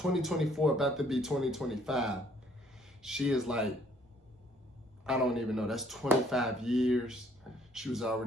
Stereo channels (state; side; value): normal; both; correlation 0.63